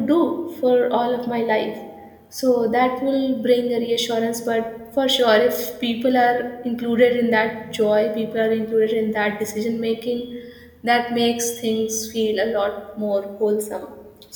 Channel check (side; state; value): both; identical; correlation 1.00